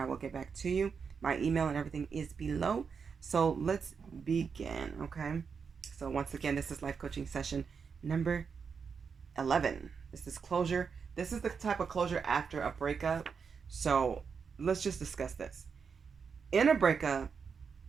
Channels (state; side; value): quieter; left; 5.9 dB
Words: will get back to you. My email and everything is below. So let's begin, okay? So once again, this is life coaching session number 11. This is closure. This is the type of closure after a breakup. So let's just discuss this. In a breakup